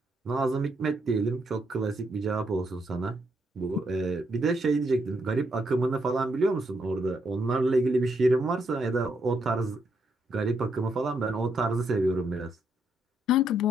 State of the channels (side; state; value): both; normal; correlation 0.76